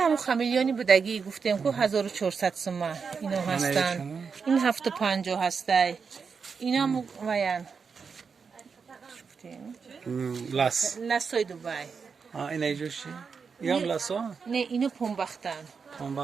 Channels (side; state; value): left; quieter; 5.6 dB